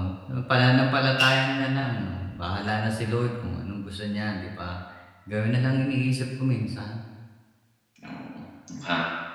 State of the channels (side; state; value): both; identical; correlation 1.00